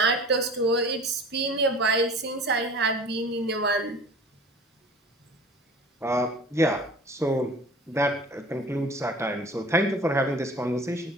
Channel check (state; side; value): normal; both; correlation 0.43